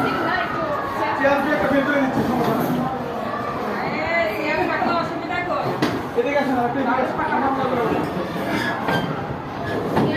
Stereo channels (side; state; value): both; identical; correlation 1.00